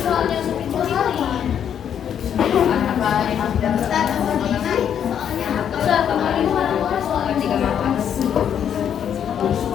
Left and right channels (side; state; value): right; quieter; 8.9 dB